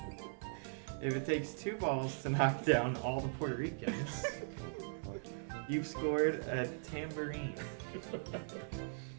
If it takes 2 balls to knock down all the Puerto Ricans, you've scored a tambourine.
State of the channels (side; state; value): left; silent; 51 dB below the other